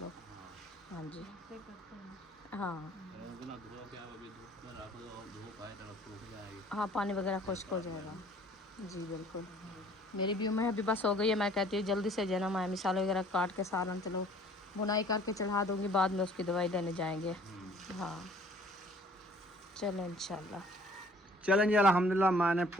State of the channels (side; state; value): both; normal; correlation 0.55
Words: हाँ जी हाँ हाँ पानी वगैरह खुश्क हो जाएगा। जी बिल्कुल। मेरी भी उम्र अभी बस हो गई है, मैं कहती हूँ जल्दी से जना मैं मिसाल वगैरह काट के सालन चलो बुनाई करके चढ़ा दूँगी, बाद में उसकी दवाई लेने जाएंगे। हाँ चलो इंशाल्लाह। चलें जी, अल्हम्दुलिल्लाह मैंने